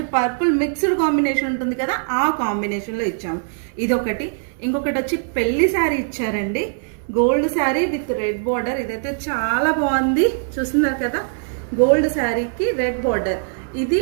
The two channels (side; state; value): left; silent; digital silence